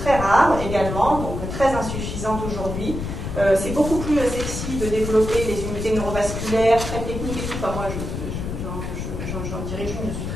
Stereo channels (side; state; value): left; noise; rumble, 5 dB below the sound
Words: rares également, donc très insuffisantes aujourd'hui. C'est beaucoup plus sexy de développer les unités neurovasculaires, très techniques et tout. Enfin, moi, j'en dirige une, je suis